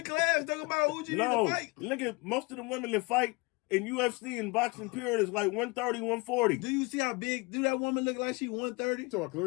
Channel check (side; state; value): right; quieter; 26.7 dB